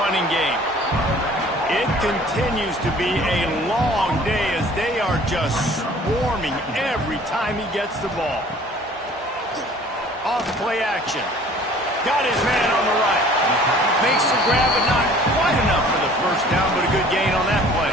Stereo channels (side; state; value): both; normal; correlation 0.51